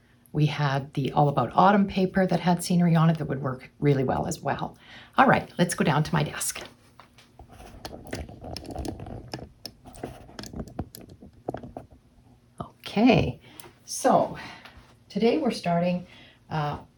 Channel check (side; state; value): both; identical; correlation 1.00